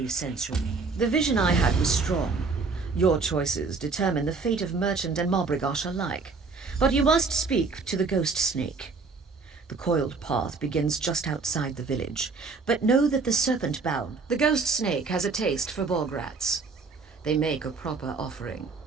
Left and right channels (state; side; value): quieter; left; 4.4 dB